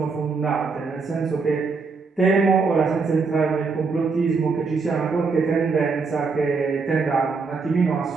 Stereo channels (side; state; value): left; quieter; 4.6 dB